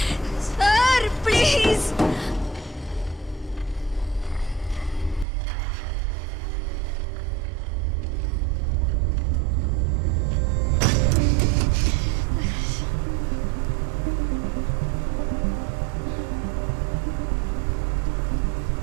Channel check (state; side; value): drops out; left; at 5.2 s